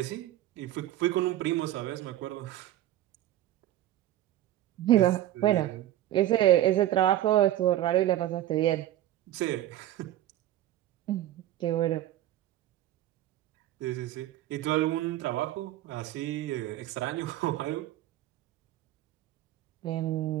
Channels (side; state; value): left; quieter; 13.6 dB